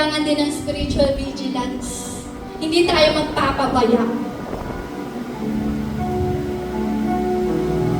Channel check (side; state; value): both; identical; correlation 1.00